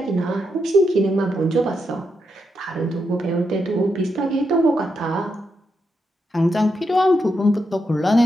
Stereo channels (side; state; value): both; normal; correlation 0.83